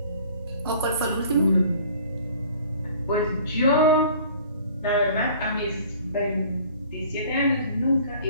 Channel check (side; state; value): both; inverted; correlation -0.50